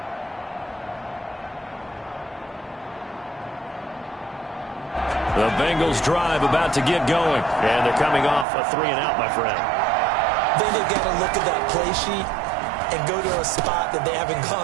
The Bengals drive about to get going. And they're coming off a 3-and-out, my friend. Then they've got to look at that play sheet and go to a spot that they haven't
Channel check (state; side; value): drops out; left; at 8.5 s